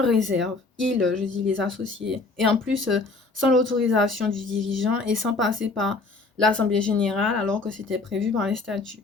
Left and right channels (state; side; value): quieter; right; 3.6 dB